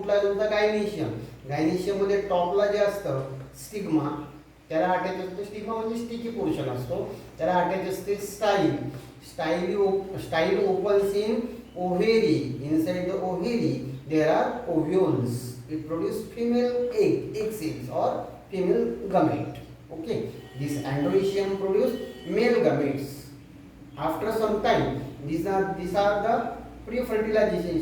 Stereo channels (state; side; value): identical; both; correlation 1.00